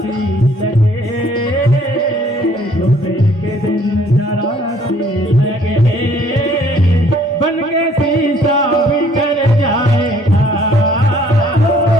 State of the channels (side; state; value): both; normal; correlation 0.60